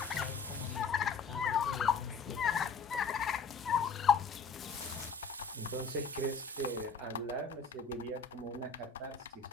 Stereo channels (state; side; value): quieter; right; 5.2 dB